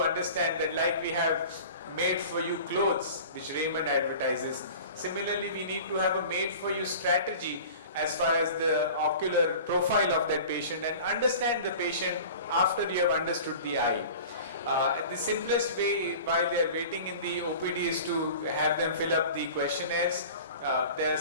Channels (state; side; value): inverted; both; correlation -0.40